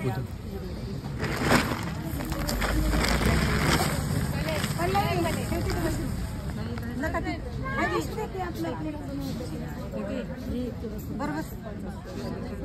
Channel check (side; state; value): both; identical; correlation 1.00